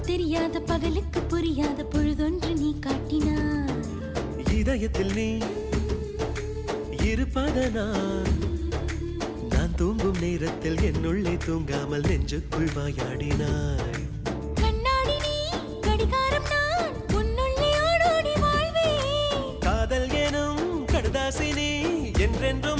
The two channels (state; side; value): identical; both; correlation 1.00